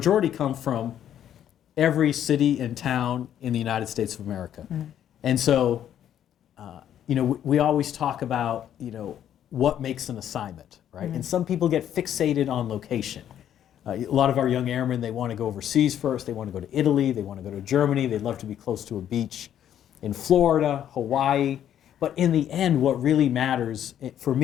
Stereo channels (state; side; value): quieter; right; 10.4 dB